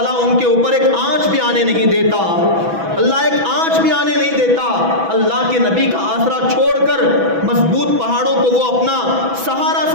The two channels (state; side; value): late; left; 6.1 ms